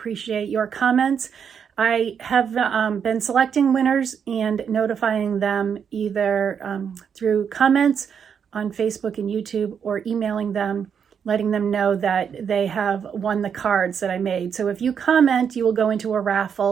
your comments. I have been selecting winners and notifying them either through comments on Facebook and YouTube or emailing them, letting them know that they have won the cards that I made. So if you comment, you will go into a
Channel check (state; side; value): quieter; left; 7.3 dB